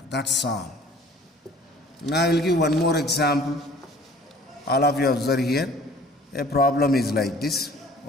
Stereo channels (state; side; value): normal; both; correlation 0.50